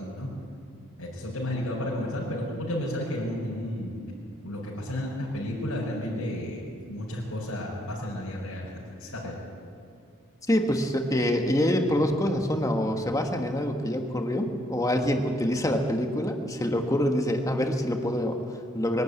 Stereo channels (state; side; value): normal; both; correlation 0.72